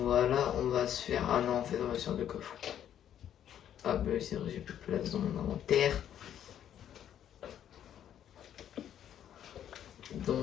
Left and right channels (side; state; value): right; quieter; 10.2 dB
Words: on va se faire... Ah non, en fait, on va se faire deux coffres. Ah bah c'est vrai, j'ai plus de place dans mon inventaire.